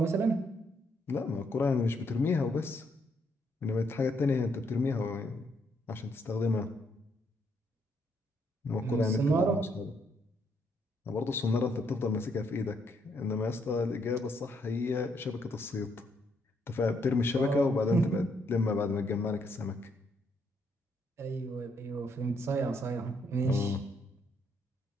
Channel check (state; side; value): normal; both; correlation 0.73